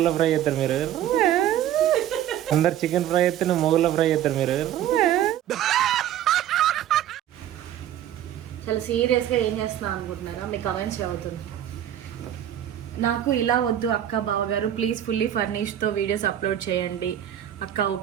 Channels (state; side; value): quieter; left; 11.3 dB